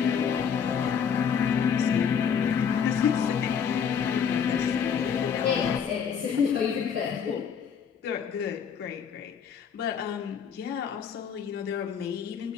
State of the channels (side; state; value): right; quieter; 7.2 dB